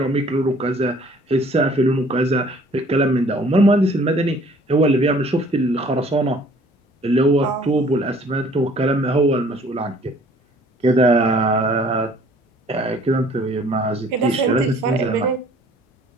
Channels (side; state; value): both; normal; correlation 0.55